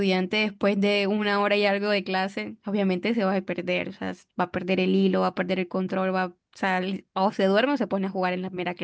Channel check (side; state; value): both; identical; correlation 1.00